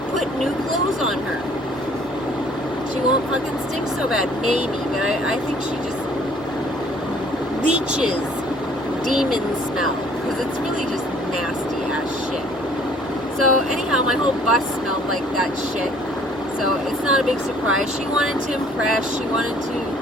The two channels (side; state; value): both; normal; correlation 0.57